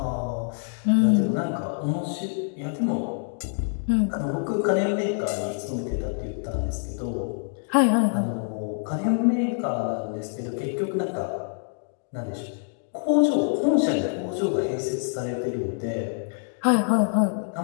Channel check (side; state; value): right; silent; digital silence